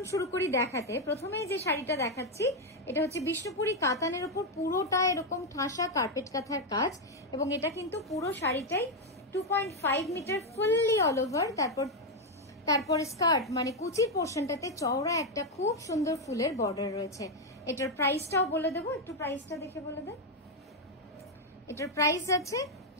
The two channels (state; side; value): normal; both; correlation 0.03